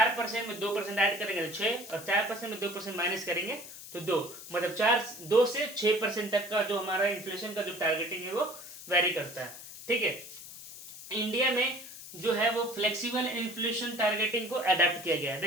में 2% ऐड करेंगे तो 6, और 4% में 2% माइनस करेंगे तो 2, मतलब 2 से 6% तक का जो हमारा इन्फ्लेशन का जो टारगेटिंग है वो वेरी करता है। ठीक है, इंडिया में जो है वो फ्लेक्सिबल इन्फ्लेशन टारगेटिंग को अडेप्ट किया गया है।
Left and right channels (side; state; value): left; noise; hiss, 14 dB below the sound